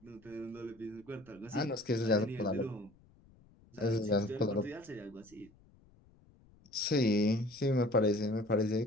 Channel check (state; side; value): noise; left; rumble, 28 dB below the sound